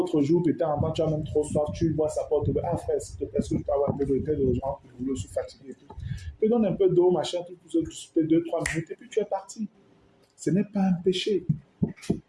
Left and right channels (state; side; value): identical; both; correlation 1.00